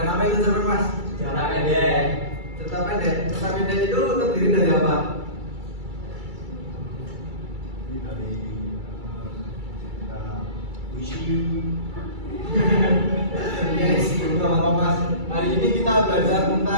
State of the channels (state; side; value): late; left; 2.3 ms